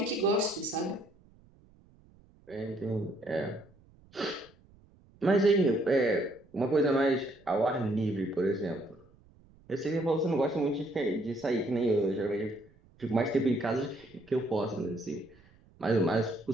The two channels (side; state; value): right; noise; rumble, 28 dB below the sound